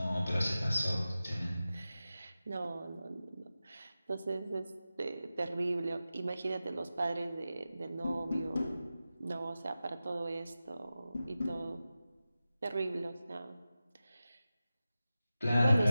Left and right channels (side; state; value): both; inverted; correlation -0.94